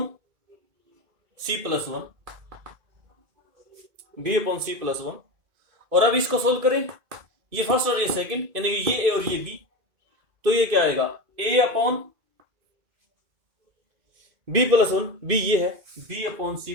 C plus one, B upon C plus one. और अब इसको सोल्व करें, ये फर्स्ट और ये सेकंड, यानी कि ये ए और ये बी, तो ये क्या आएगा, A upon B plus one, B ये है, B upon C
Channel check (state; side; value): late; left; 2.6 ms